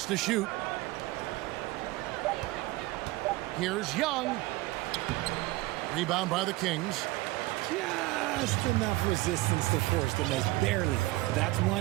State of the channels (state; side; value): quieter; left; 19.8 dB